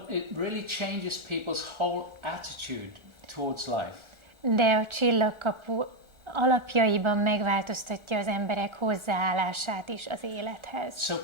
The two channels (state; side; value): late; left; 1.4 ms